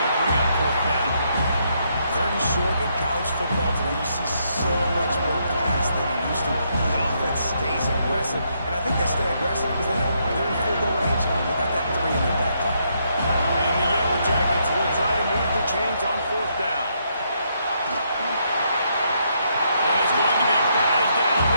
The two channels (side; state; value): both; inverted; correlation -0.76